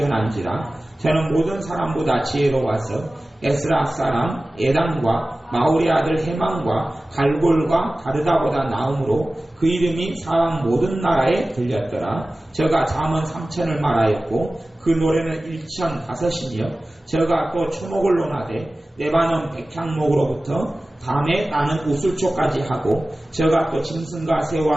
저는 모든 사람보다 지혜로워서 에스라 사람 에단과 마울의 아들 헤만과 갈골과 다르다보다 나음으로 그 이름이 사람 모든 나라에 들렸더라. 저가 잠언 3천을 말하였고 그 노래는 1,005이며 저가 또 초목을 논하되 레바논 백향목으로부터 담에 나는 우슬초까지 하고 저가 또 짐승과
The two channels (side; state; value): both; normal; correlation 0.96